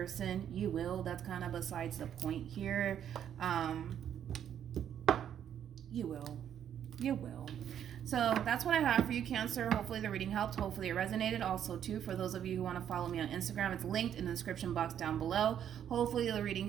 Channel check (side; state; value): left; quieter; 9.5 dB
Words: You will. That's kind of besides the point here. You will. So that's what I have for you, Cancer. Hopefully the reading helped. Hopefully it resonated. Also, too, for those of you who want to follow me on Instagram, it's linked in the description box down below. Hopefully the reading